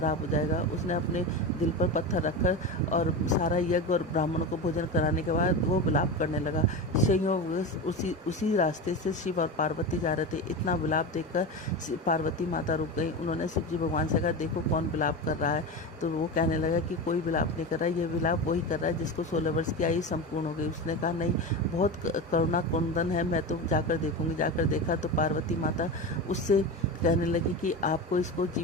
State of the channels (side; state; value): both; normal; correlation 0.23